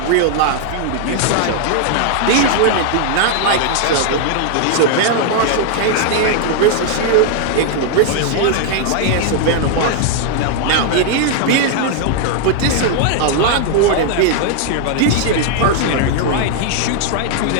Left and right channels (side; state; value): both; different; correlation 0.00